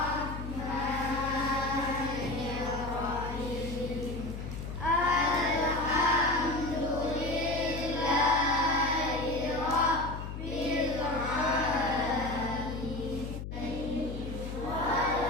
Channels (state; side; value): noise; left; hum, 7 dB below the sound